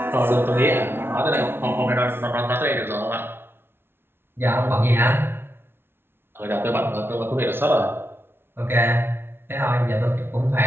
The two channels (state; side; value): late; left; 0.11 ms